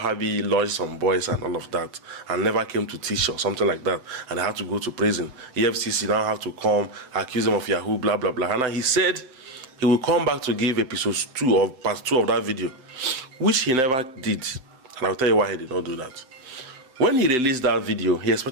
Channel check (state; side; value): late; left; 7.8 ms